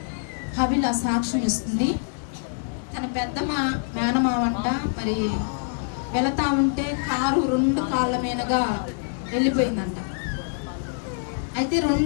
హబిల సాక్ష్యం ఇస్తుంది. తన పెద్ద మేనమావంట మరి వెళతా ఉంటే కారు 2 కాళ్ళ మీదగా వెళ్ళిపోయిందంట. అయితే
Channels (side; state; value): right; silent; digital silence